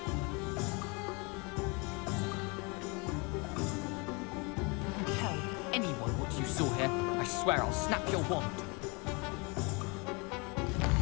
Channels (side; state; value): right; quieter; 30.2 dB